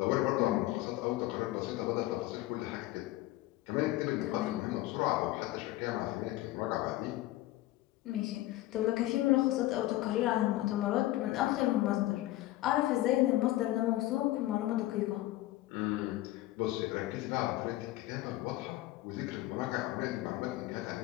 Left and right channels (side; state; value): right; quieter; 16.6 dB